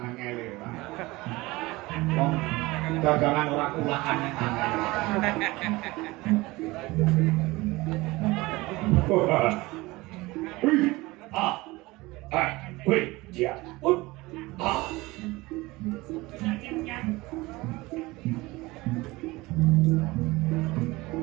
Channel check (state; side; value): quieter; left; 21.2 dB